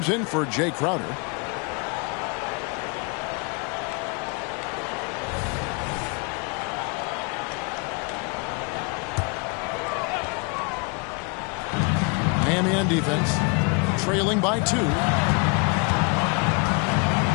in for Jay Crowder. Miami on defense, trailing by 2.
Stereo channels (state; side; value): quieter; right; 32.5 dB